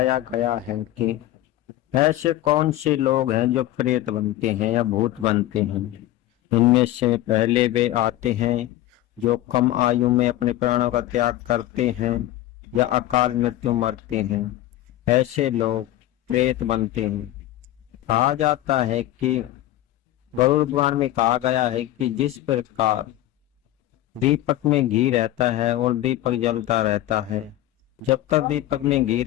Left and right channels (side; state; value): right; quieter; 14.7 dB